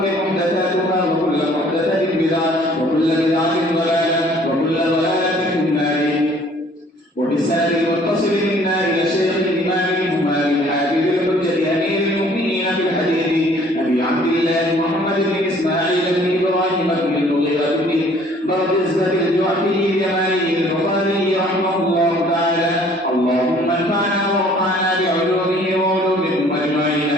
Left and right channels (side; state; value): both; normal; correlation 0.56